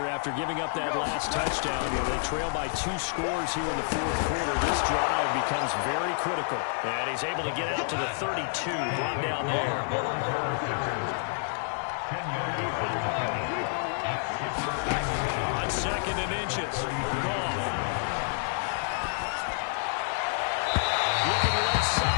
after giving up that last touchdown, they trail by 2 scores here in the fourth quarter. This drive becomes very critical. And he's able to get out to the 32, brought down there. On 2nd and inches. Goff. Looking left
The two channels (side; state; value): right; silent; digital silence